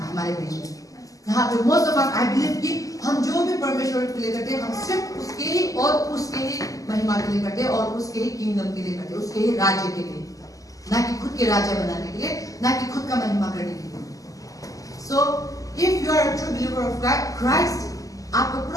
हमारे बीच में. यहाँ पे most of us I believe कि हम जो भी परमेश्वर के लिए करते हैं हम सिर्फ उसके ही और उसके ही महिमा के लिए करते हैं और उसके ही किंगडम के लिए करते हैं, उसके ही राज्य के लिए, ना कि खुद के राज्य बनाने के लिए, ना कि खुद का महिमा करने के लिए. So if you are a true believer of Christ, आपका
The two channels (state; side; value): late; right; 0.17 ms